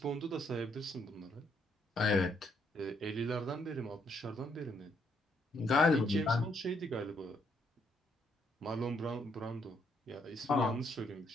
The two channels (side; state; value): both; normal; correlation 0.73